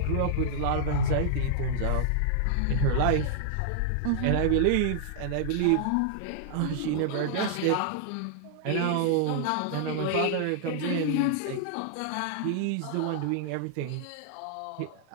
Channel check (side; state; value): both; different; correlation -0.01